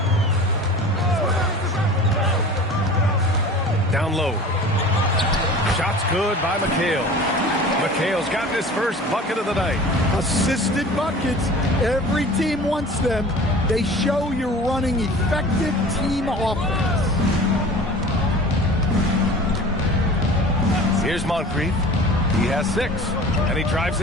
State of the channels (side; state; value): both; normal; correlation 0.41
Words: Down low. Shot's good by McHale. McHale's gotten his first bucket of the night. Assisted buckets. Every team wants them. They show you're running effective team offense. Here's Moncrief. He has 6. And he drives